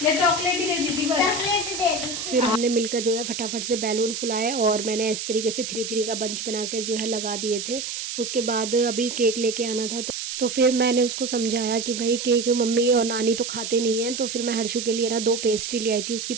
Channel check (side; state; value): right; noise; hiss, 5 dB below the sound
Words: या चॉकलेट ही दे दी थी बस? चॉकलेट दे दी। फिर हमने मिलकर जो है फटाफट से बैलून फुलाए, और मैंने इस तरीके से 3-3 का बंच बना कर जो है लगा दिए थे। उसके बाद अभी केक लेके आना था, तो फिर मैंने उसको समझाया कि भाई केक मम्मी और नानी तो खाते नहीं हैं। तो फिर मैं हर्षु के लिए ना 2 पेस्ट्री ले आई थी उसकी